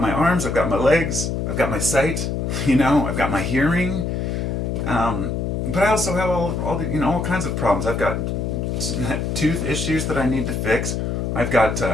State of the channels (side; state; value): left; noise; hum, 1 dB below the sound